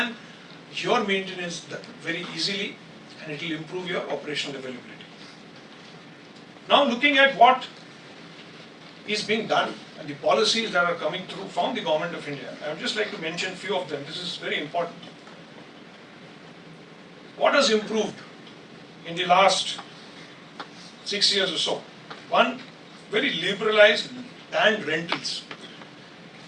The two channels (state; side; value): identical; both; correlation 1.00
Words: your maintenance very easily, and it will improve your operational availability. Now looking at what is being done and the policies that are coming through from the Government of India, I would just like to mention a few of them. This is very important. What has improved in the last 6 years or so? One, very liberalized land rentals.